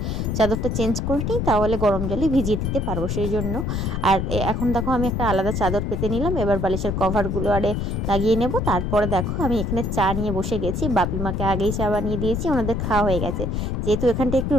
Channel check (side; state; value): left; noise; rumble, 1 dB below the sound